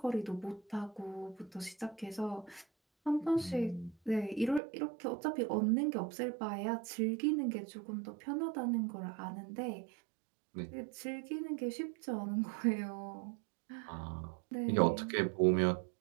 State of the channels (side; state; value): left; drops out; at 4.6 s